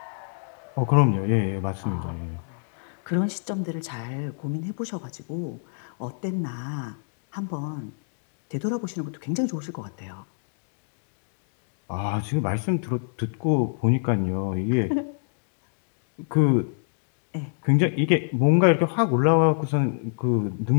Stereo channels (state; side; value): silent; right; digital silence